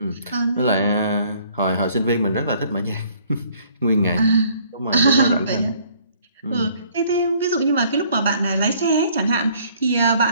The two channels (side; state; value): both; inverted; correlation -0.60